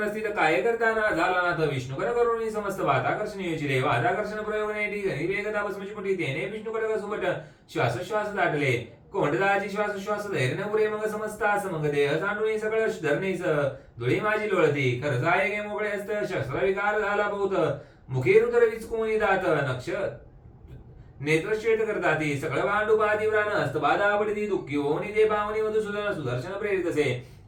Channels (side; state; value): both; identical; correlation 1.00